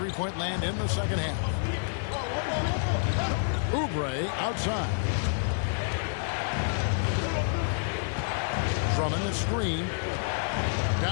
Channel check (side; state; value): right; silent; digital silence